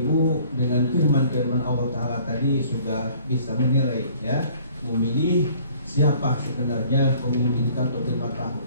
dengan firman-firman Allah Ta'ala tadi sudah bisa menilai, ya, memilih siapa sebenarnya pemimpin untuk 5 tahun.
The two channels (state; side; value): inverted; both; correlation -0.55